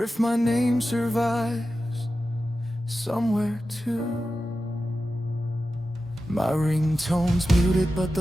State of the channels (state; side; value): normal; both; correlation 0.92